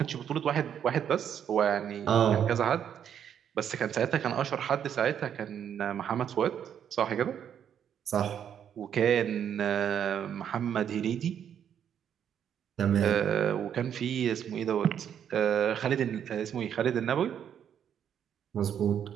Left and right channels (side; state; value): left; quieter; 8.9 dB